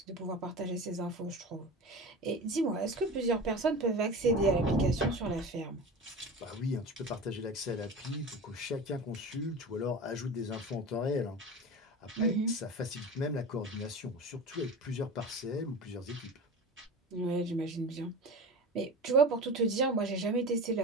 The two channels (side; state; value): both; normal; correlation 0.31